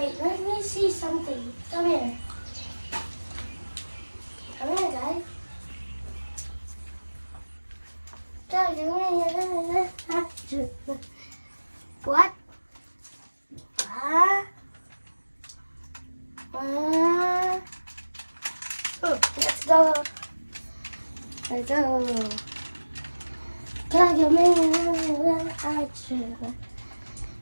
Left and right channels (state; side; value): inverted; both; correlation -1.00